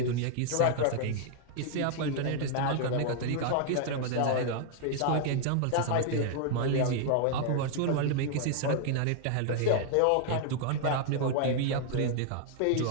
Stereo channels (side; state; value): both; different; correlation 0.00